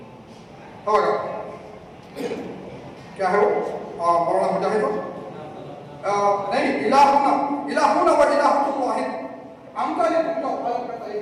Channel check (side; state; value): both; identical; correlation 1.00